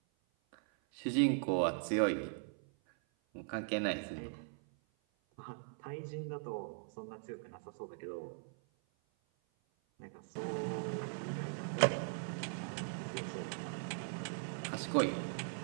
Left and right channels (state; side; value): silent; left; 51 dB below the other